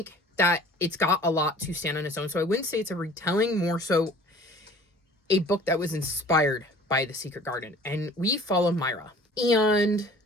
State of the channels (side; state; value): both; normal; correlation 0.48